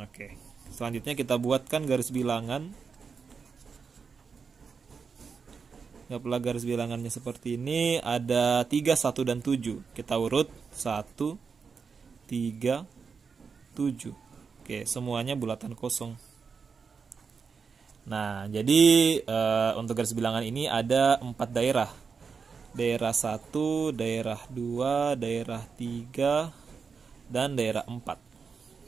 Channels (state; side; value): quieter; left; 5.5 dB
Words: Selanjutnya kita buatkan garis bilangan. Dapatlah garis bilangannya seperti ini. Ada 3, 1, dan 7. Kita urut 1, 3, 7. Oke, semuanya bulatan kosong. Nah, jadi untuk garis bilangan ini ada 4 daerah. Daerah 1, daerah 2, daerah 3, dan daerah 4.